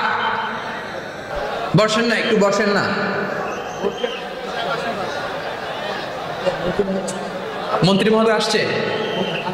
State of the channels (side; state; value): both; identical; correlation 1.00